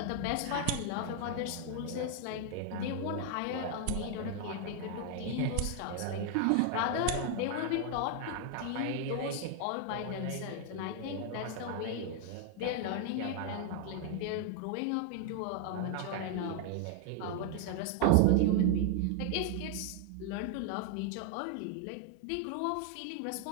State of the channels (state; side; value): different; both; correlation 0.00